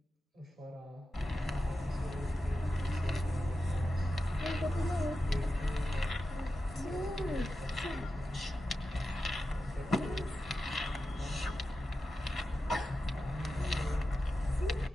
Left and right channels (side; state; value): both; normal; correlation 0.91